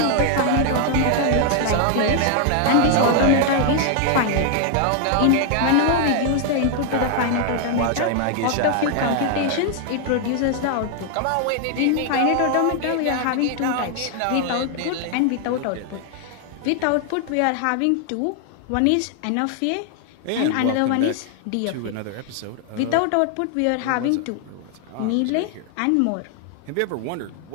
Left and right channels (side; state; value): both; different; correlation 0.00